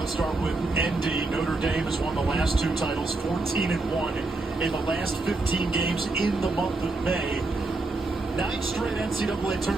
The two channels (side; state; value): left; quieter; 3.2 dB